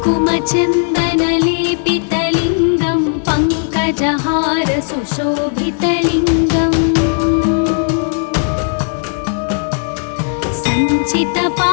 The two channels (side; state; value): right; silent; 70 dB below the other